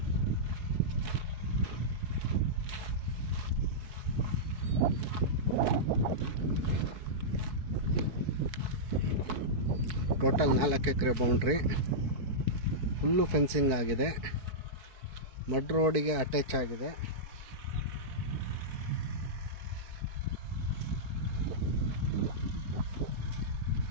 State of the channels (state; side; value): late; left; 4.6 ms